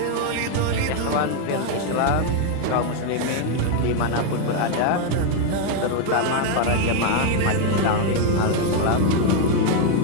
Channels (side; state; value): both; different; correlation 0.01